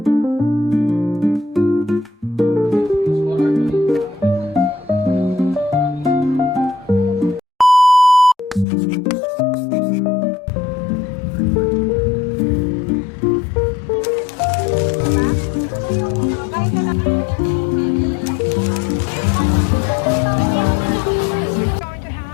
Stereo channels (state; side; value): drops out; right; at 8.7 s